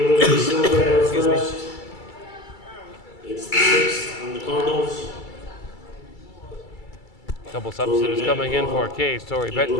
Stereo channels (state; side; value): late; right; 2.3 ms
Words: Silva, her first. It's the 6th on the Cardinals. Couple substitutes coming in for Case. Tori